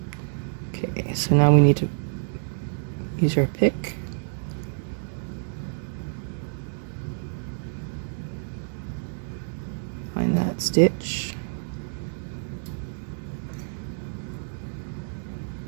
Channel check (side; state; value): left; silent; 60 dB below the other